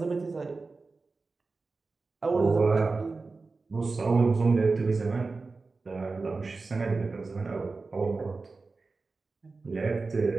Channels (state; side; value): quieter; left; 3.9 dB